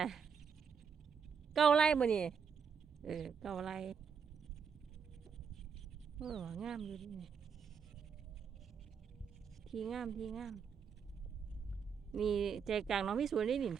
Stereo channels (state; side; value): quieter; left; 6.6 dB